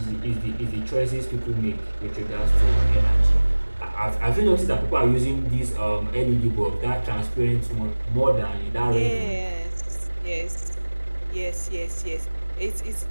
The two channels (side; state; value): both; inverted; correlation -1.00